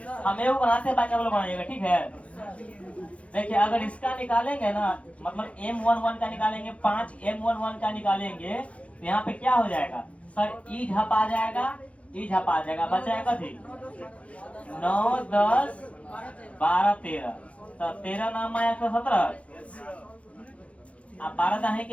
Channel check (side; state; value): right; late; 0.064 ms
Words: हम एगो बनाते हैं, बाकी आप लोग बनाइएगा, ठीक है? देखिए अगर इसका निकालेंगे ना, मतलब M11 का निकालेंगे, 5 M11 का निकालेंगे तो यहाँ पे क्या हो जाएगा? सर ई झप आ जाएगा, ई झप आ जाएगा, बचाएगा थी 9, 10, 12, 13। तो 13 नाम आया 117, अब 12 दाहे